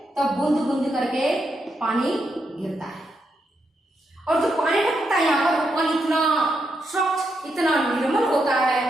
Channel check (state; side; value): normal; both; correlation 0.82